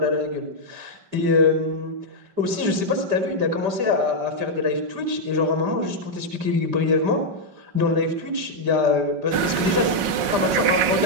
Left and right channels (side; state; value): left; late; 5.5 ms